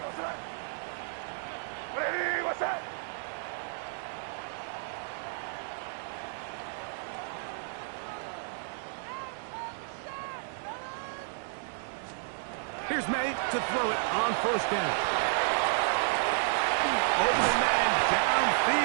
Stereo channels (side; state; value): left; silent; digital silence